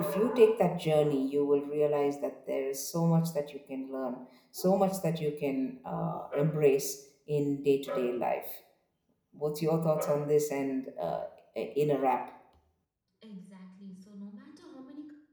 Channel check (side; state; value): both; identical; correlation 1.00